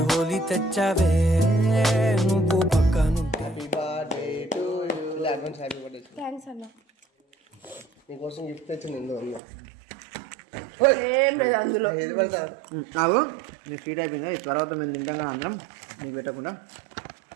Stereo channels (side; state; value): left; drops out; at 9.4 s